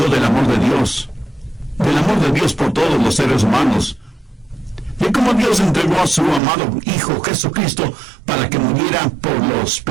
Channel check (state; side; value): drops out; left; at 6.4 s